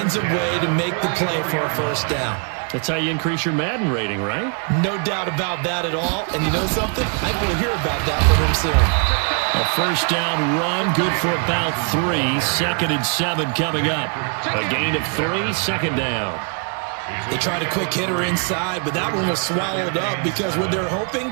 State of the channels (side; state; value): left; quieter; 39.4 dB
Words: a way to make the play for a first down. That's how you increase your Madden rating, right? No doubt about that at all. And you know something? I think we'll hear about that from him soon. A first down run, good for about 3. 2nd and 7 coming up. A gain of 3, second down. They tried a quick hitter inside, but that one was swallowed up because what they're